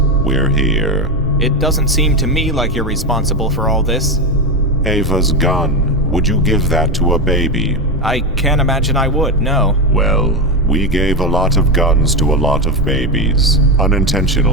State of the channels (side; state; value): both; normal; correlation 0.13